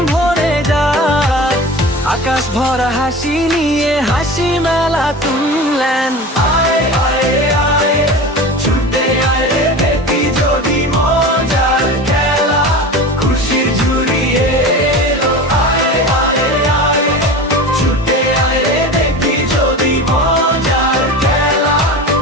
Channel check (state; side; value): normal; both; correlation 0.32